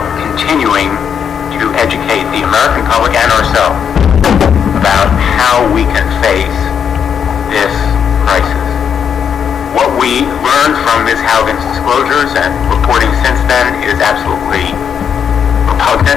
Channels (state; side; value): quieter; right; 7.7 dB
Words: continuing to educate the American public and ourselves about how we can face this crisis. What we learned from Ms. Haugen's disclosures and reporting since then is absolutely